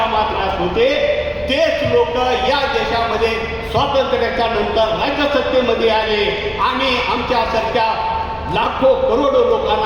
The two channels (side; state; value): both; identical; correlation 1.00